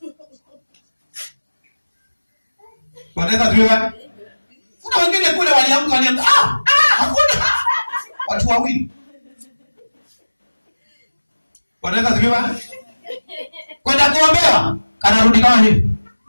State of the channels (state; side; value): inverted; both; correlation -1.00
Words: Bwana Yesu asifiwe. Kuna wengine kule waliamka hakuna. Watu wawili. Bwana Yesu asifiwe. Kwenda kuombewa, kanarudi kama hivi.